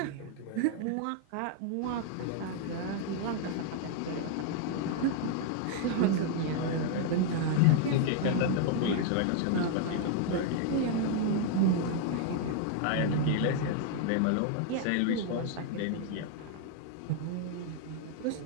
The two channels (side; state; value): both; different; correlation 0.00